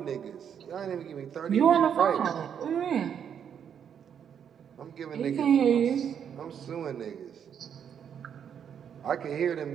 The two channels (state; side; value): quieter; left; 8.2 dB